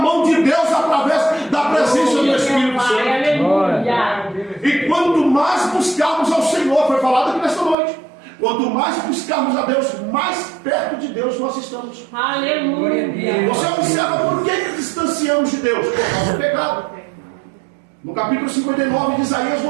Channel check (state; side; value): drops out; left; at 7.8 s